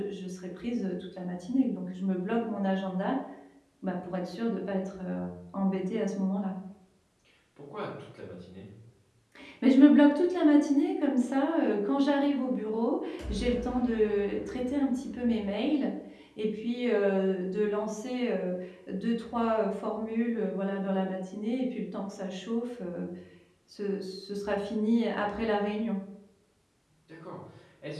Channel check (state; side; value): identical; both; correlation 1.00